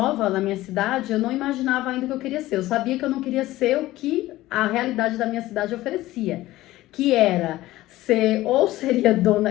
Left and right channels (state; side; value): quieter; right; 16.6 dB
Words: na minha cidade, eu não imaginava ainda o que eu queria ser. Eu sabia que eu não queria ser o que a realidade da minha cidade oferecia, que era seria